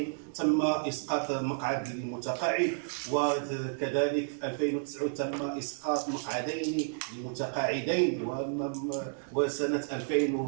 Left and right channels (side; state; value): left; silent; digital silence